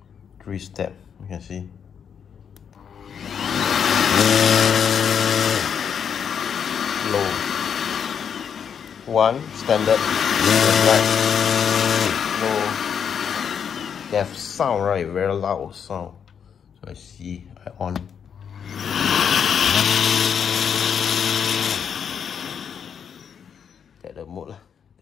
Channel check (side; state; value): right; quieter; 7.5 dB